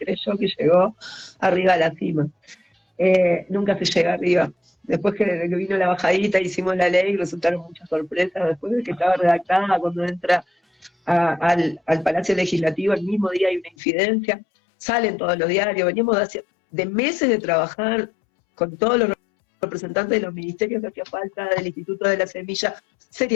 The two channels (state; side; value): drops out; right; at 13.7 s